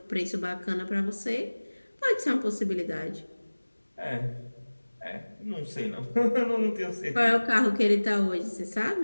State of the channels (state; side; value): inverted; both; correlation -1.00